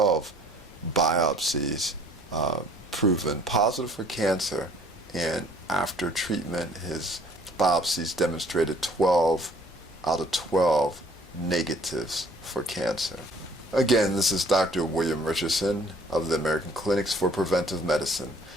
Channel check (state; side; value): normal; both; correlation 0.57